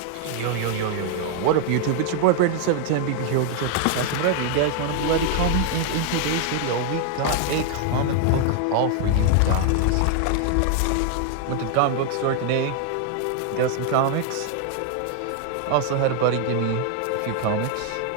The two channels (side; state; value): both; different; correlation 0.00